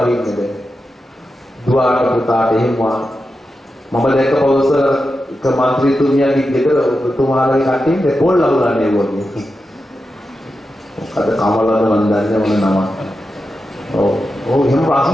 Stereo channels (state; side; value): normal; both; correlation 0.90